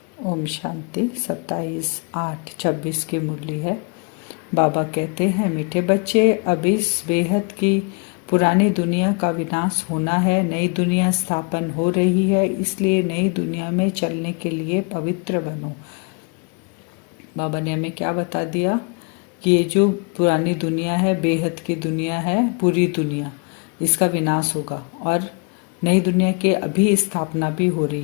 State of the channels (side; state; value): right; quieter; 35.0 dB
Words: ओम शांति। 27/8/26 की मुरली है। बाबा कहते हैं, मीठे बच्चे, अब इस बेहद की पुरानी दुनिया का विनाश होना है, नई दुनिया स्थापन हो रही है, इसलिए नई दुनिया में चलने के लिए पवित्र बनो। बाबा ने हमें क्या बता दिया कि ये जो पुरानी दुनिया है, बेहद की दुनिया है, पूरी दुनिया, इसका विनाश होगा और नई दुनिया की अभी स्थापना भी हो